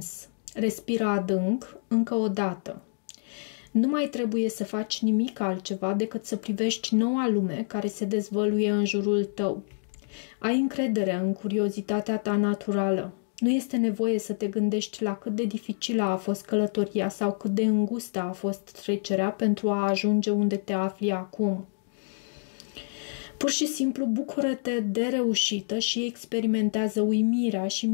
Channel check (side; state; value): right; silent; digital silence